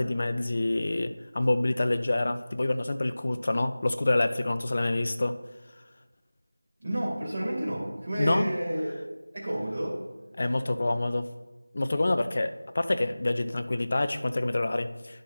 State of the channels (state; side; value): inverted; both; correlation -0.99